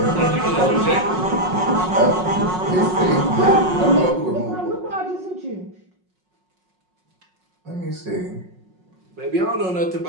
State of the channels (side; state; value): left; late; 5.5 ms